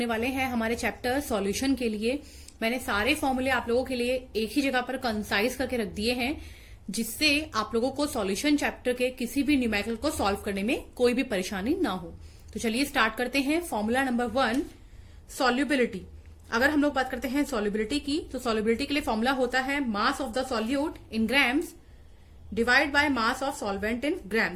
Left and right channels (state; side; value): identical; both; correlation 1.00